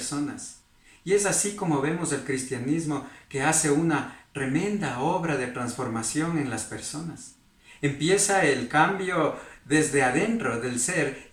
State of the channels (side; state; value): both; identical; correlation 1.00